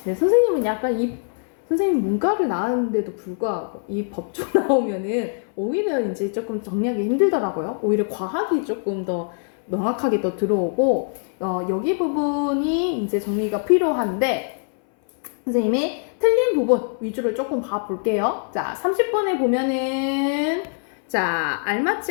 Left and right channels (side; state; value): right; silent; 60 dB below the other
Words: 선생님은 약간 선생님 문과를 나왔는데도 불구하고 이 법조 나오면은 오히려 이제 조금 정리하기 힘들더라고요. 오히려 과학이 조금 더 명확하게 더 들어오고 여기 부분이 이제 정리가 필요한데 선생님이 틀린 부분 위주로 조금 봐볼게요. 자, 30번에 보면은 자, 알맞지